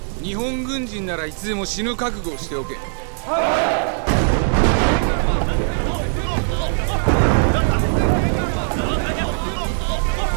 日本軍人ならいつでも死ぬ覚悟をしておけ。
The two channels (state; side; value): silent; left; digital silence